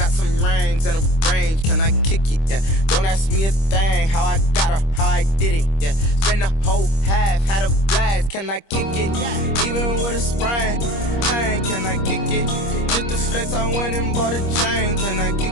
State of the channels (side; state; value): right; late; 25 ms